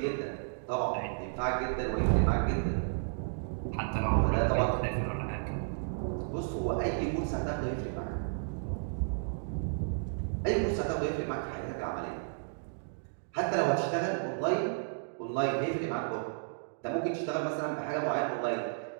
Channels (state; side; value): silent; left; digital silence